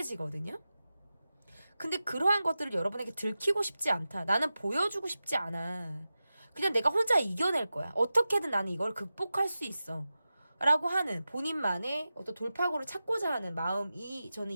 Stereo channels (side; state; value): both; inverted; correlation -0.94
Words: 근데 그러한 것들을 여러분에게 들키고 싶지 않다. 나는 보여주고 싶지 않아. 그냥 내가 혼자 이겨낼 거야. 어떻게든 나는 이걸 극복할 수 있어. 라고 하는 본인만의 어떤 돌파구를 찾고자 하는 마음이 저는